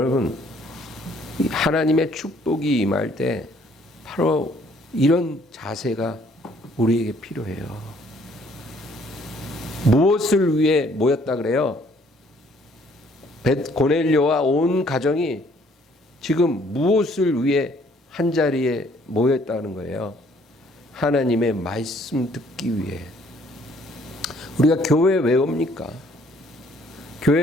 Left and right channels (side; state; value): both; normal; correlation 0.62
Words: 하나님의 축복이 임할 때 바로 이런 자세가 우리에게 필요해요. 무엇을 위해 모였다 그래요? 고넬료와 온 가정이 지금 무엇을 위해 한자리에 모였다는 거예요? 하나님의 말씀 듣기 위해. 우리가 교회 왜 옵니까? 교회